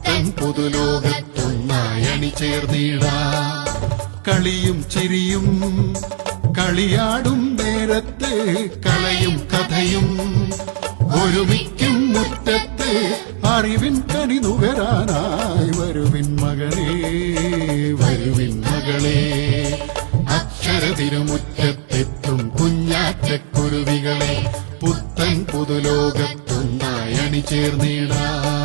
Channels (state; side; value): silent; left; digital silence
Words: പുതുലോകത്തൊന്നായി അണിചേർന്നിടാം. കളിയും ചിരിയും കളിയാടും നേരത്തെ കലയും കഥയും ഒരുമിക്കും മുറ്റത്തെ അറിവിൻ കനി നുകരാനായി വരുവിൻ മകനേ, വരുവിൻ മകളെ. അക്ഷരതിരുമുറ്റത്തെത്തും കുഞ്ഞാറ്റക്കുരുവികളെ പുത്തൻ പുതുലോകത്തൊന്നായി അണിചേർന്നിടാം.